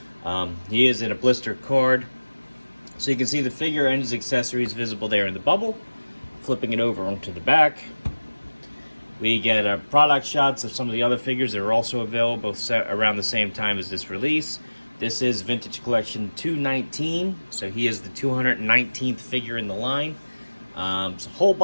He is in a blister card, so you can see the figure and his accessories visible there in the bubble. Flipping it over onto the back, we get product shots of some of the other figures that are also available around the same time as this release. This is Vintage Collection 219, so he is the 219th figure in the line. It's a whole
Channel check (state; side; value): inverted; both; correlation -1.00